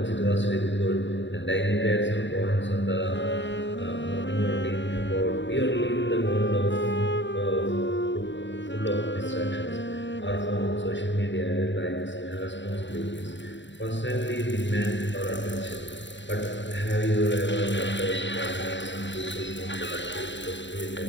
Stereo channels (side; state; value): right; late; 0.53 ms